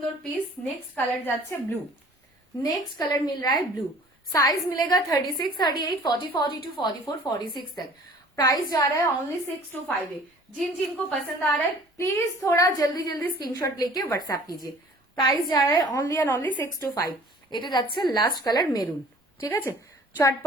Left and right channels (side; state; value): both; normal; correlation 0.50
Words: পিস। নেক্সট কালার যাচ্ছে ব্লू, नेक्स्ट कलर मिल रहा है ब्लू, साइज मिलेगा 36, 38, 40, 42, 44, 46 तक। प्राइस जा रहा है ओनली 625 है। जिन जिनको पसंद आ रहा है प्लीज थोड़ा जल्दी जल्दी स्क्रीनशॉट लेके व्हाट्सएप कीजिए। प्राइस जा रहा है ओनली एंड ओनली 625। এটা যাচ্ছে লাস্ট কালার মেরুন, ঠিক আছে?